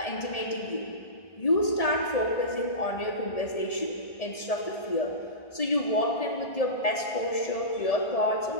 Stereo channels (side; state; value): right; late; 1.8 ms